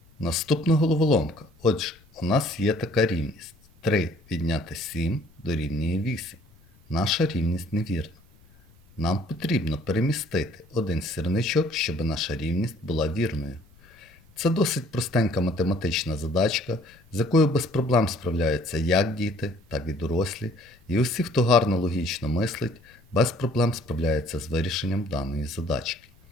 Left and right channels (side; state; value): left; noise; rumble, 29 dB below the sound